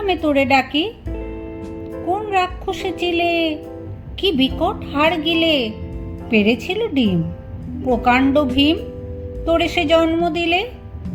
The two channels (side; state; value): both; identical; correlation 1.00